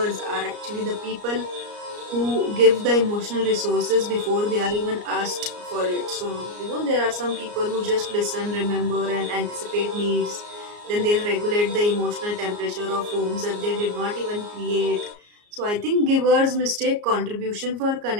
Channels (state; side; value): late; left; 34 ms